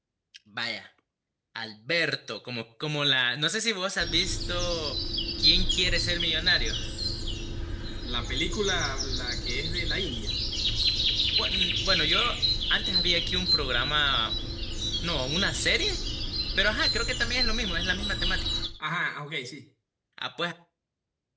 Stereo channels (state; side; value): identical; both; correlation 1.00